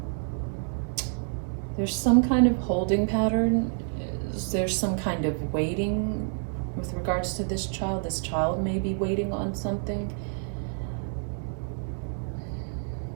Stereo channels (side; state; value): left; silent; 59 dB below the other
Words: There's some kind of holding pattern. There's some kind of waiting with regards to this child. This child may be waiting on something.